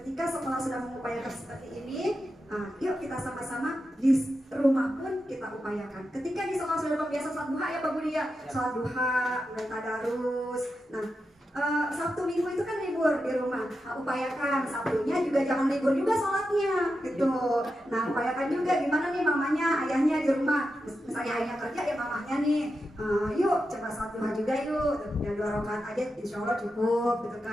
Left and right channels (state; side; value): normal; both; correlation 0.89